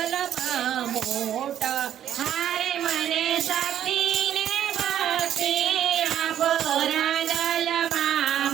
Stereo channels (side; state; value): left; quieter; 10.6 dB